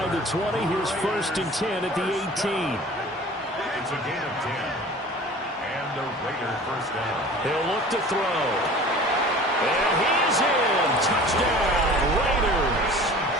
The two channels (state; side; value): normal; both; correlation 0.43